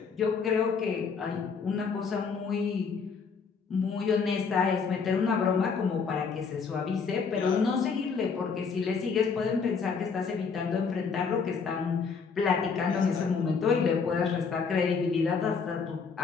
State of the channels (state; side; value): quieter; right; 5.5 dB